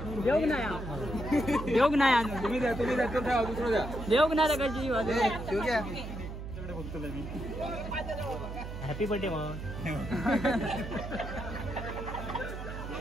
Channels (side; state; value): right; noise; hum, 8 dB below the sound